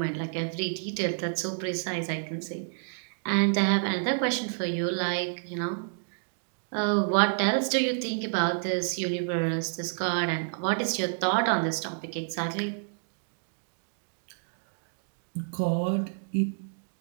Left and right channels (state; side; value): silent; left; digital silence